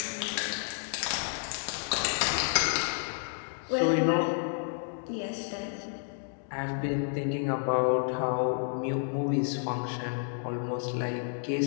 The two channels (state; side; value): silent; right; digital silence